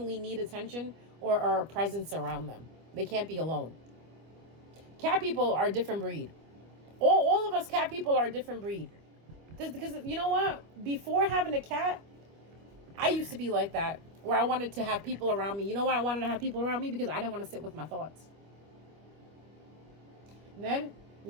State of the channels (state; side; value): late; left; 25 ms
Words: need attention or a presence around them. They can't be alone. Cat people are a different breed. All of us cat people are a different breed. Because you know what? Before having a cat, I used to be like that. Where I wanted to have people around me. You know why I wanted to have people around me? Because I didn't want to sit with my thoughts. And then,